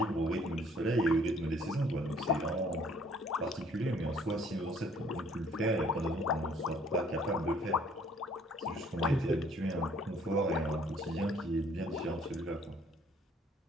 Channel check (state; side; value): normal; both; correlation 0.60